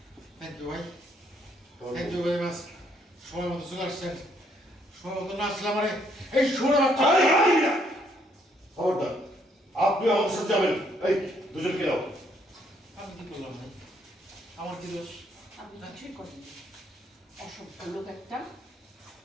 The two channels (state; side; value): normal; both; correlation 0.70